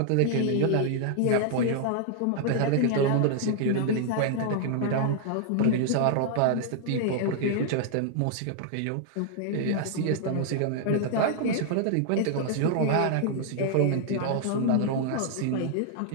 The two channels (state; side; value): different; both; correlation -0.01